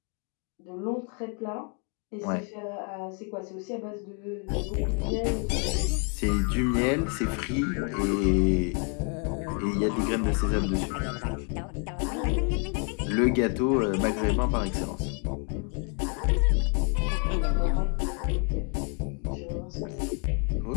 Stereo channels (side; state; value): right; quieter; 38.7 dB